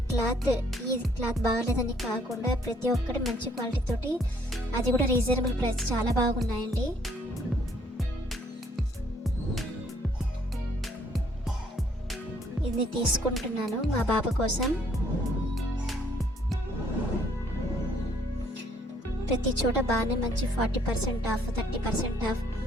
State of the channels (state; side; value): normal; both; correlation 0.64